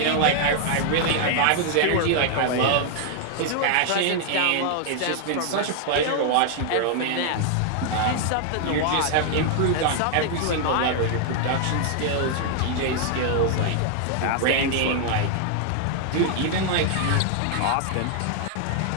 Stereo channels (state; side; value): different; both; correlation 0.00